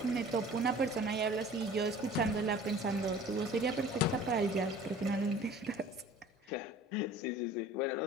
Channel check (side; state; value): both; normal; correlation 0.46